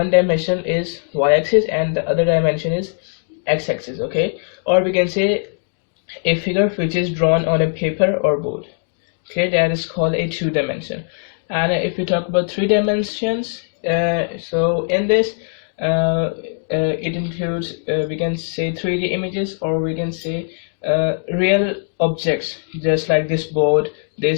dimension is y-axis and the other dimension is x-axis. Okay, or we can say a figure which is drawn on a paper or board. Okay, that is called a two-dimension. And if we talk about three dimensions, so in this it includes we can say 3D images, or we can say real objects just like this board,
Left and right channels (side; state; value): right; silent; digital silence